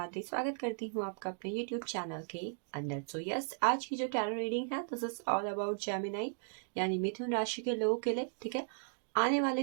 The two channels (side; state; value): left; silent; digital silence